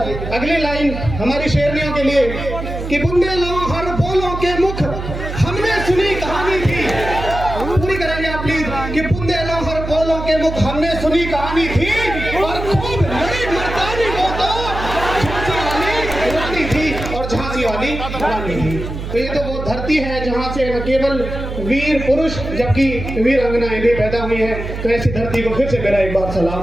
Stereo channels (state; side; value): noise; right; hum, 7 dB below the sound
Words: अगली लाइन हमारी शेरनियों के लिए कि बुंदेलों हर बोलों के मुख हमने सुनी कहानी थी। पूरी करेंगे आप प्लीज। कि बुंदेलों हर बोलों के मुख हमने सुनी कहानी थी, और खूब लड़ी मर्दानी वो तो झांसी वाली रानी थी, और झांसी वाली रानी थी। तो ये तो वो धरती है जहाँ से न केवल वीर पुरुष जबकि वीर अंगनाएं भी पैदा हुई हैं। तो ऐसी धरती को फिर से मेरा एक बार